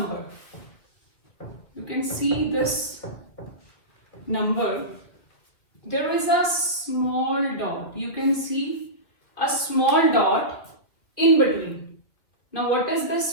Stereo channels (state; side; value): late; right; 2.0 ms